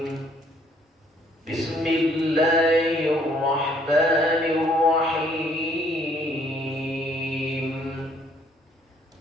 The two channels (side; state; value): both; normal; correlation 0.64